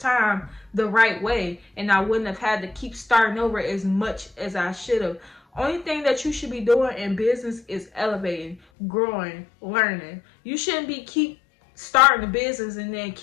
the right way, and I wouldn't have had to keep starting over as much as I should have. Only thing that you should be doing in business is elevating, growing, learning. You shouldn't be keep starting a business and then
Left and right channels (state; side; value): drops out; right; at 8.6 s